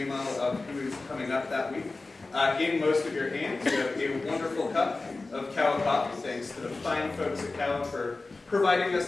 of who is coming up that week. In most of your hands, you have a wonderful cup of Kawa coffee, thanks to the fine folks at Kawa for providing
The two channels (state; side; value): quieter; right; 3.5 dB